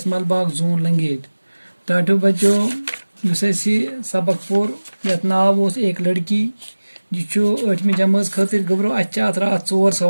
Malbagh zone Langate. टाटो बच्चों युस सबक पोर यथ नाव ओस एक लड़की यह 8वीं जमात खतर गबरो अत रात 4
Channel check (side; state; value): both; inverted; correlation -1.00